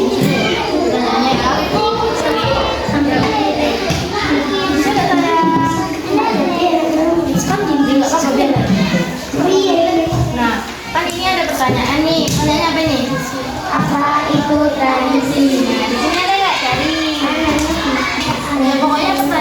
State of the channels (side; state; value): both; identical; correlation 1.00